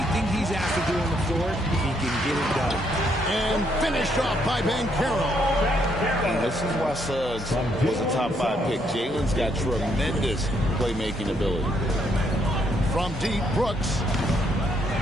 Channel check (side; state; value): both; normal; correlation 0.73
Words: he's asked to do on the floor, he can get it done. And finished off by Banchero. This is why Suggs was a top 5 pick. Jalen's got tremendous playmaking ability. From deep, Brooks.